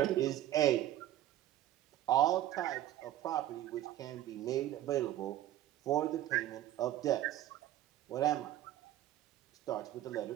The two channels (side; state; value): left; quieter; 13.3 dB